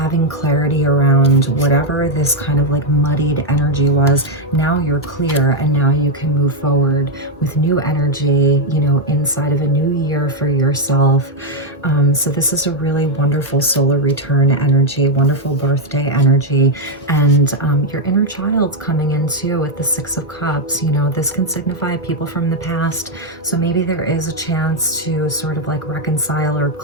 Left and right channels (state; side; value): normal; both; correlation 0.01